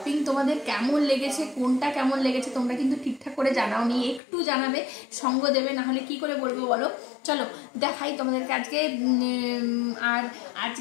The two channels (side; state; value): right; drops out; at 4.2 s